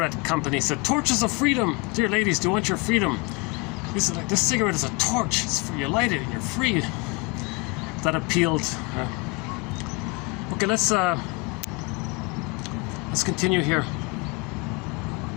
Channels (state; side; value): quieter; right; 24.7 dB